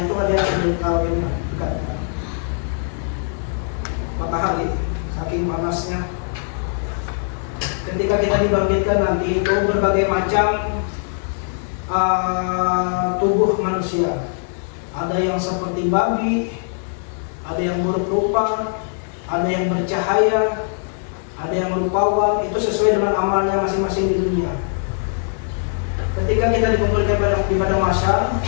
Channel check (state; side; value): silent; right; digital silence